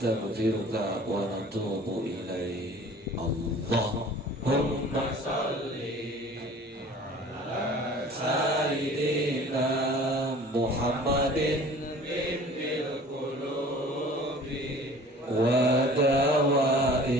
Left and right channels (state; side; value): normal; both; correlation 0.47